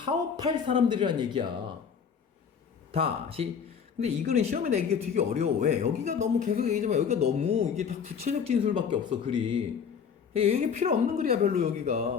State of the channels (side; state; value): right; quieter; 6.9 dB